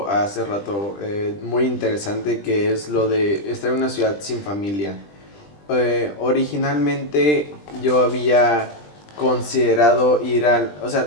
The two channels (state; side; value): late; right; 20 ms